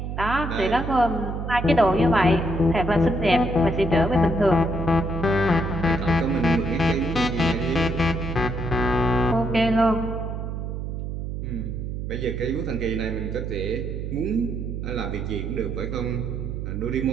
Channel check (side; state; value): right; noise; hum, 5 dB below the sound